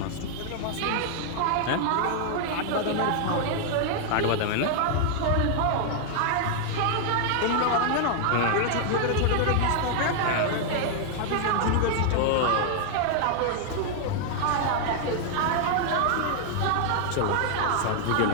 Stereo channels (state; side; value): different; both; correlation 0.00